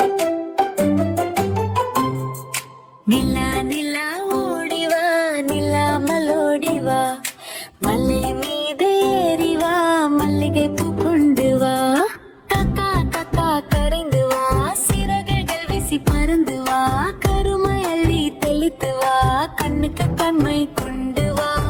நிலா நிலா ஓடிவா, நிலாமல் ஓடிவா, மலை மீது ஏறிவா, மல்லிகை பூ கொண்டு வா. காக்கா காக்கா கரைந்து வா, சிறகுகள் வீசி பறந்து வா, கருமை அள்ளி தெளித்து வா, கண்ணுக்கு கண்மை கொண்டு வா.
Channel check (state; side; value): identical; both; correlation 1.00